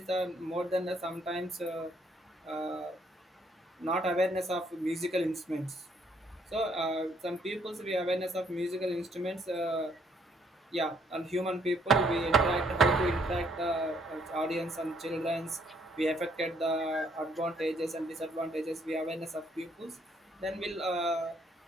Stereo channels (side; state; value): both; normal; correlation 0.68